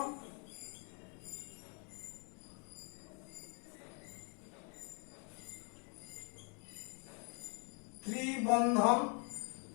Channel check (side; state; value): right; quieter; 37.7 dB